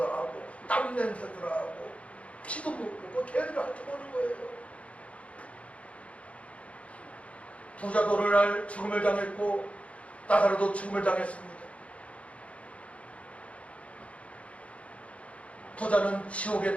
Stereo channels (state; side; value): late; right; 0.063 ms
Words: 나고 땀 냄새도 나고 피도 묻고 걔들이 핥아보는 거예요. 부자도 오늘날 죽음을 당했고 나사로도 죽음을 당했습니다. 부자는 지옥에